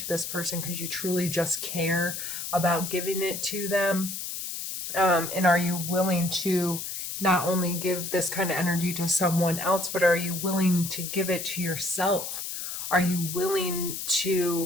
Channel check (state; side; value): noise; left; hiss, 6 dB below the sound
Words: this person because you truly just care about giving it to them? And are you willing to not only give this kind of energy to someone else, but are you willing to give it to yourself? Are you willing